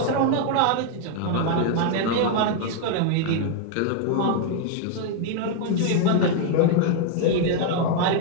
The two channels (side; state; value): both; different; correlation 0.00